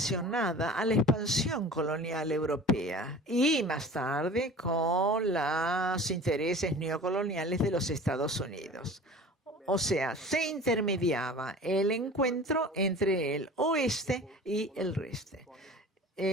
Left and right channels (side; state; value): both; normal; correlation 0.41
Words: a la expansión colonial europea y más tarde con los intereses neocoloniales de los Estados Unidos. O sea, se intermediaba el encuentro entre el oeste y el este,